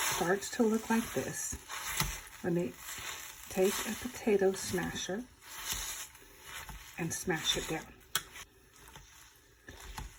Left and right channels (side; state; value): both; identical; correlation 1.00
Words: starts to look like this, let me take a potato smasher and smash it down.